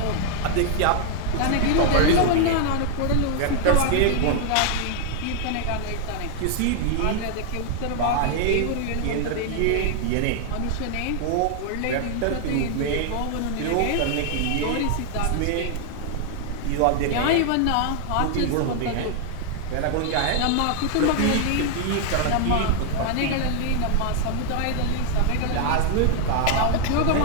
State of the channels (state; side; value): different; both; correlation 0.00